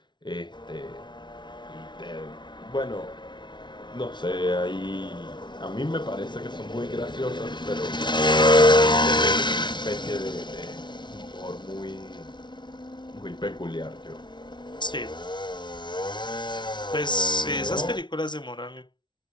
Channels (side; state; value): right; late; 0.22 ms